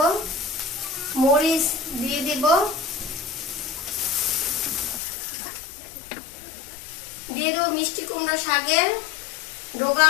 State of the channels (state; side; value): drops out; right; at 5.0 s